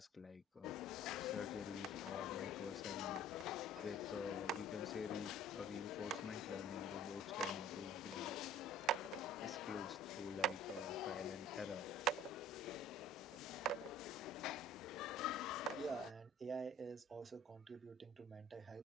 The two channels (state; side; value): normal; both; correlation 0.51